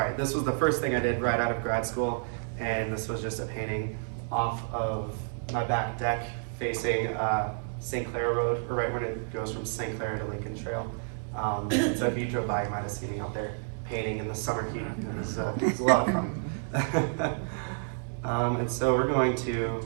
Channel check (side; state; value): left; silent; digital silence